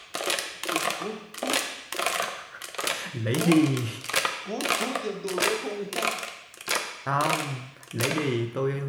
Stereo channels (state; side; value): identical; both; correlation 1.00